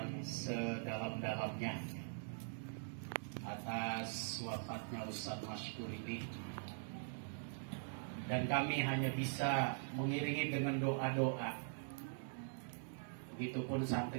sedalam-dalamnya atas wafatnya Ustaz Maskur ini. Dan kami hanya bisa mengiringi dengan doa-doa. Begitupun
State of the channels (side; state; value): left; silent; digital silence